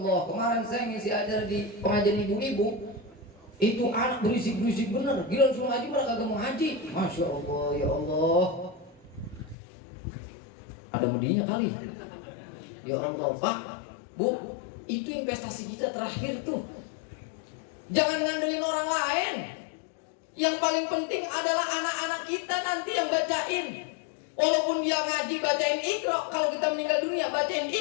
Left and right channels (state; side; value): drops out; right; at 9.6 s